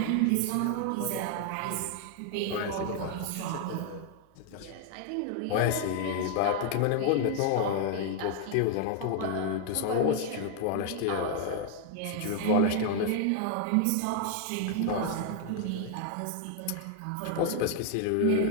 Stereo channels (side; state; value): both; different; correlation 0.00